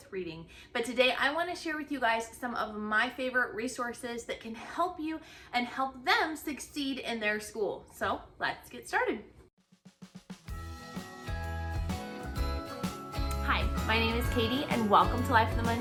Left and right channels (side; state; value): both; identical; correlation 1.00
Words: reading, but today I want to share with you guys some of my favorite resources that can help you and help them succeed in their school. So let's get started. Hi, my name is Katie and welcome to Life in the